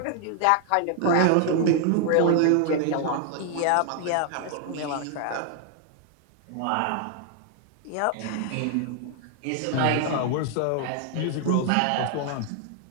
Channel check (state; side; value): different; both; correlation 0.00